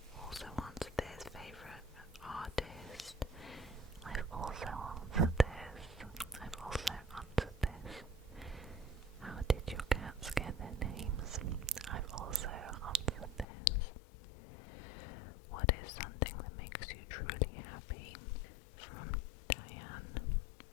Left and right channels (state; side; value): drops out; right; at 13.5 s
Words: also answered this. Favourite artist? I've also answered this. I've also answered this. How did your cats get their names? I've also answered this. What is something that makes you truly happy? From Diane.